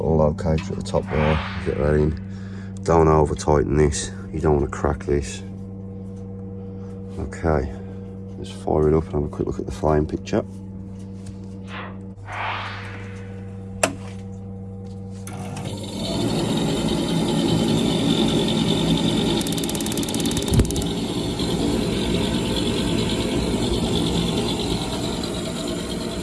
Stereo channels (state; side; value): identical; both; correlation 1.00